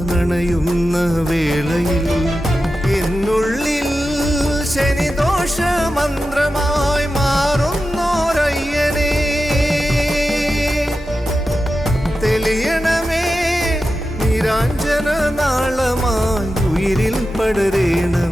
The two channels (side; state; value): both; normal; correlation 0.91